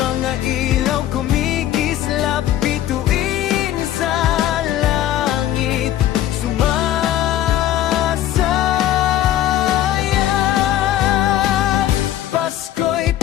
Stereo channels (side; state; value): right; quieter; 12.5 dB